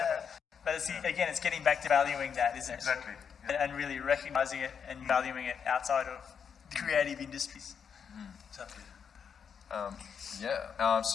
But again, it's getting back to valuing that, isn't it? Exactly. And really recognizing it and valuing it outside of creative industries. Exactly.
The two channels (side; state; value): right; quieter; 7.0 dB